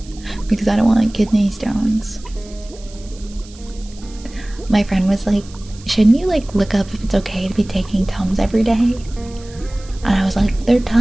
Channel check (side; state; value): right; noise; hiss, 22 dB below the sound